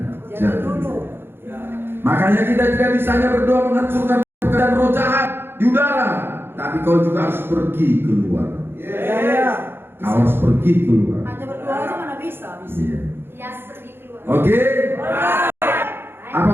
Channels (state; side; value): late; left; 0.11 ms